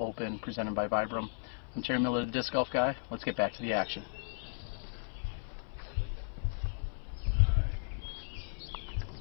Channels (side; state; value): right; silent; 54 dB below the other